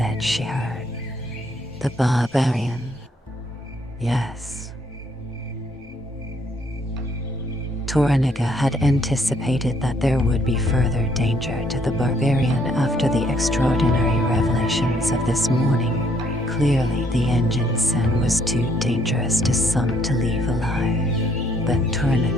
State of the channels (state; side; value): normal; both; correlation 0.67